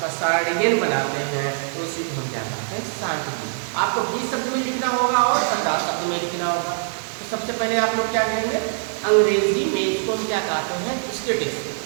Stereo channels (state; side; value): silent; left; digital silence